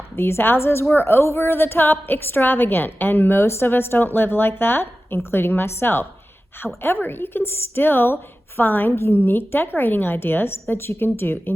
these houses were over the top extravagant, and most of us don't live like that, including myself. However, you can still find unique decorating ideas that you can do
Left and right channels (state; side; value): normal; both; correlation 0.95